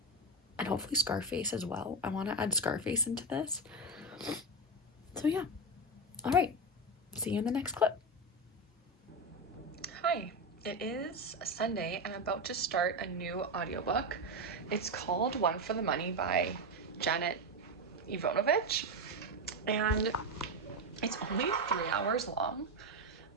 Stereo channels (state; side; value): normal; both; correlation 0.13